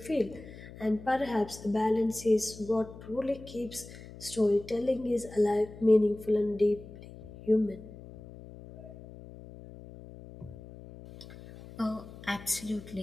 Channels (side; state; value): left; noise; hum, 16 dB below the sound